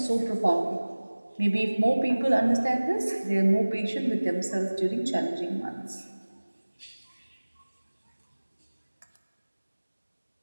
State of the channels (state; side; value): inverted; both; correlation -1.00